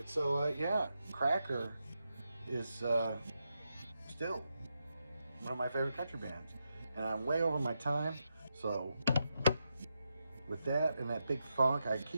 so, yeah, Cracker is still one of my favorite country bands. And I'm way over my time, so with that and that big funk, I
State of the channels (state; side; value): inverted; both; correlation -0.86